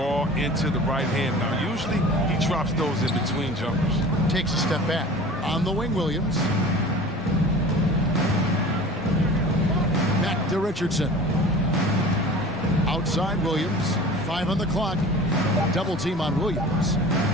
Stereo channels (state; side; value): normal; both; correlation 0.40